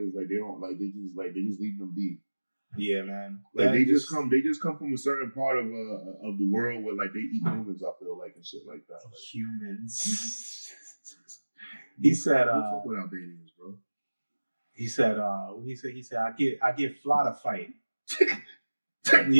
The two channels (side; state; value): both; inverted; correlation -1.00